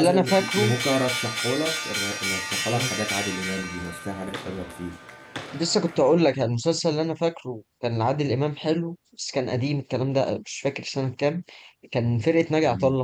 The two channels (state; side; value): identical; both; correlation 1.00